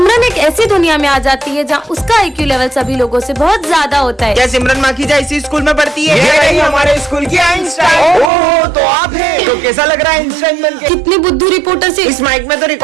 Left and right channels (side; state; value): left; drops out; at 8.3 s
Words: एक ऐसी दुनिया में आ जाती है जहाँ उसका IQ लेवल सभी लोगों से बहुत ज्यादा होता है। क्या सिमरन माखीजा इसी स्कूल में पढ़ती है? ये रही हमारे स्कूल की आइंस्टाइन। ओह, तो आप हैं। तो कैसा लग रहा है आइंस्टाइन बनके? कितनी बुद्धू रिपोर्टर से। इस माइक में तो